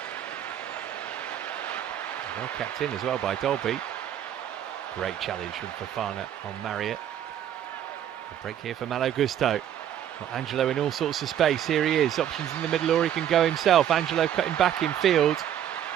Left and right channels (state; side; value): quieter; left; 10.3 dB